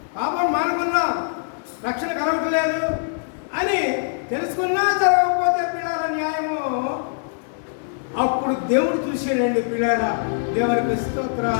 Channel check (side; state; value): right; silent; 60 dB below the other